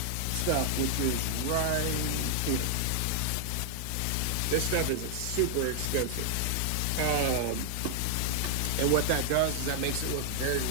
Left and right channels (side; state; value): both; different; correlation 0.00